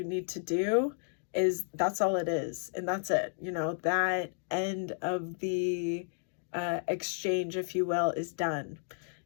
need to do, is that's all it is. And that's it. You know, that end of the exchange, if you will, is done.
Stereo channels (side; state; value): right; silent; digital silence